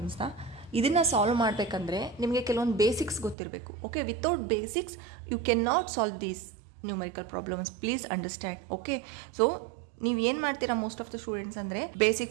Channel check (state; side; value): drops out; left; at 3.4 s